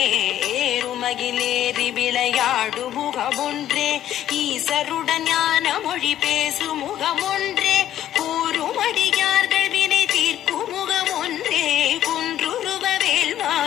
ஏறுமகிலேறி விளையாடு முகமொன்றே ஈசருடன் ஞான மொழி பேசு முகமொன்றே கூறுமடியார்கள் வினை தீர்க்கும் முகமொன்றே குன்றுருவ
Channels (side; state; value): right; quieter; 11.8 dB